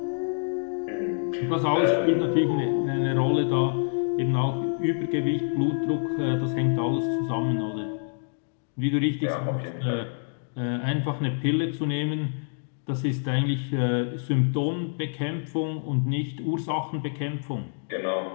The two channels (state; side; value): silent; right; digital silence